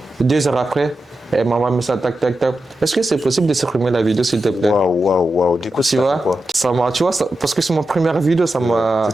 2 heures après, elle m'a envoyé ça, tac, tac, tac. Est-ce que c'est possible de supprimer la vidéo, s'il te plaît? Waouh. Du coup, Tu vois, tu vois parce que c'est mon première vidéo, ça m'a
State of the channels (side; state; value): both; normal; correlation 0.90